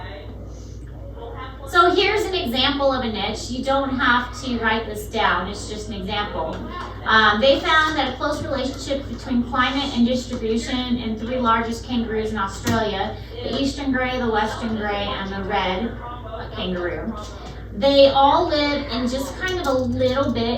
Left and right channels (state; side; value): identical; both; correlation 1.00